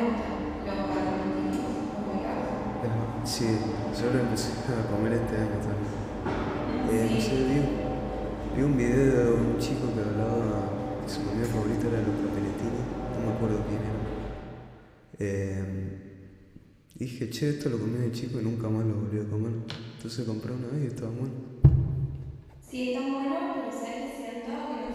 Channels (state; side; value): identical; both; correlation 1.00